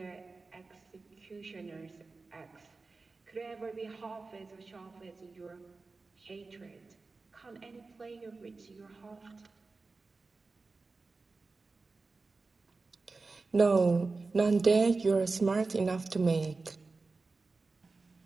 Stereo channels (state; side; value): quieter; left; 3.9 dB